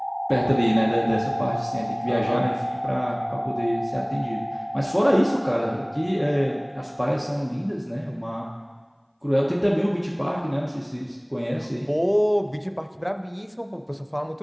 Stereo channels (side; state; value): both; identical; correlation 1.00